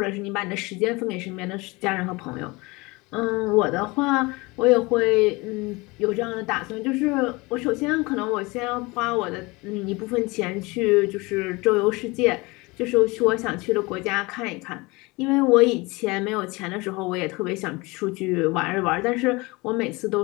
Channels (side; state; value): right; quieter; 24.4 dB